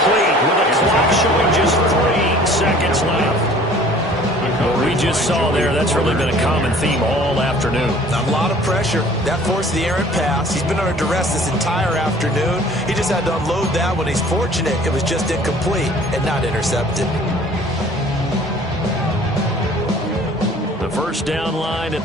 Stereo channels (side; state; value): both; normal; correlation 0.51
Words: with the clock showing just 3 seconds left. What we just saw there, that's really been a common theme all afternoon. A lot of pressure. That forced the errant pass. He's been under duress this entire afternoon. He just had to unload that one. He's fortunate it was just incomplete and not intercepted. The 1st down line at